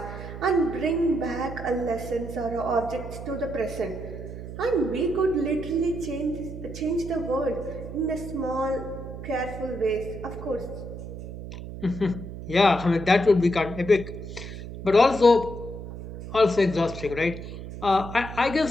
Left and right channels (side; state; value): right; noise; hum, 10 dB below the sound